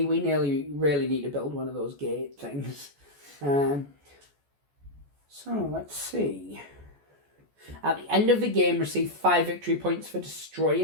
We really need to build one of those gate things. So, let's see. At the end of the game, receive 5 victory points for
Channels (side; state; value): left; late; 14 ms